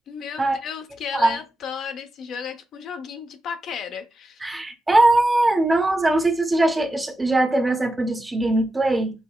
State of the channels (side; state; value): both; normal; correlation 0.90